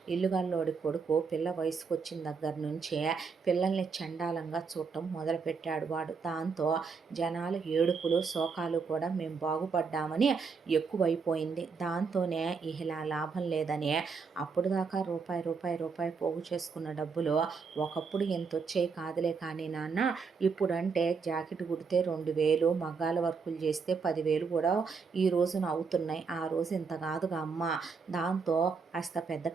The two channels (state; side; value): quieter; left; 5.2 dB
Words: ఇల్లుగల్లోడి కొడుకు పిల్ల వయసుకు వచ్చిన దగ్గర నుంచే పిల్లల్ని చండాలంగా చూడటం మొదలుపెట్టాడు వాడు. దాంతో జనాలు ఏడుపులు శోకాలు కూడా మేము బాగుపడ్డామని ఎక్కువైపోయింది. దాంతోనే ఇలా లాభం లేదని అప్పుడు దాకా రూపాయి పోగు చేసుకున్న డబ్బులు ఒకప్పుడు ఎంత వచ్చాయి కాదులే కానీ నాన్న, ఇప్పుడంటే జాకెట్ కుడితే 2000, మగ్గాల వర్కులు చేస్తే 10,000 కూడా ఈ రోజున అవుతున్నాయి. ఆ రోజు ఇంత కాదుగా అమ్మ. దాంతో కాస్త పెద్ద